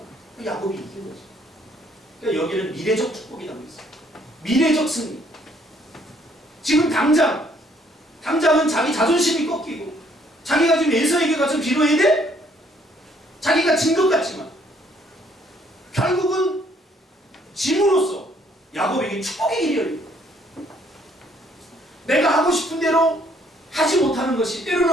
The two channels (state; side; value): normal; both; correlation 0.65